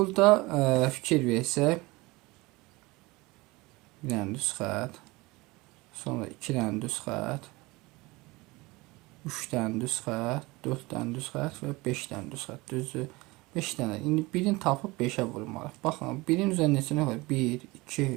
fikir versək, bir dənə düz xətt, sonra 2 dənə düz xətt, 3 dənə düz xətt, 4 dənə düz xətt və 5 dənə düz xətt, düzü. 5 dənə. İndi birini tapıb 5-ə vurmalıyıq. Baxın, birin üzərində neçə nə var? 1, 2,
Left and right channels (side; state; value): left; quieter; 22.6 dB